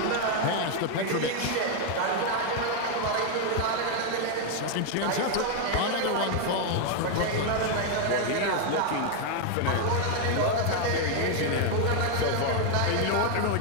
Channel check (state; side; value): different; both; correlation 0.01